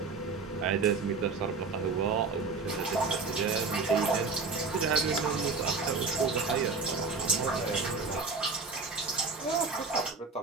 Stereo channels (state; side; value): quieter; left; 4.3 dB